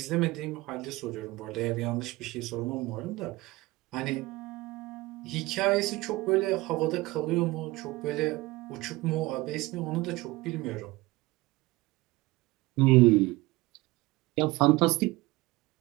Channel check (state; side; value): quieter; left; 20.8 dB